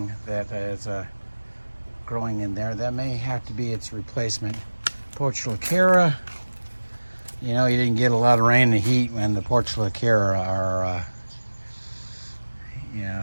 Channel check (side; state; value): both; inverted; correlation -1.00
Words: that is growing in there. That may have to be its replacement. Portulacara, you know, you didn't get a lot of rain and heat when the Portulacara